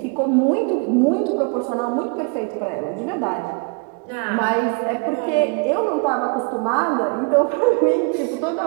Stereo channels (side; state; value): left; quieter; 34.0 dB